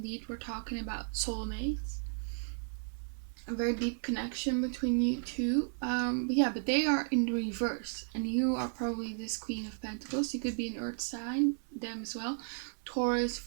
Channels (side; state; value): left; silent; 55 dB below the other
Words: we're talking about soulmates. A very deep connection between you two. But they are in reverse. And you are probably this Queen of Pentacles. You could be an Earth sign, them as well. Taurus,